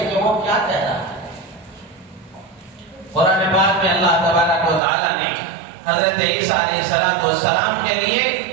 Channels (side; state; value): left; drops out; at 4.8 s